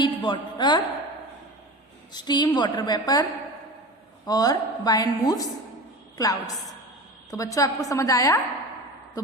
water, steam water vapour और वाइंड मूव्स क्लाउड्स। तो बच्चों आपको समझ आया? तो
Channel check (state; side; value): normal; both; correlation 0.31